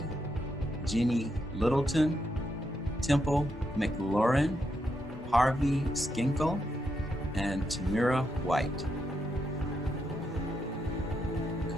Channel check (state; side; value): normal; both; correlation 0.82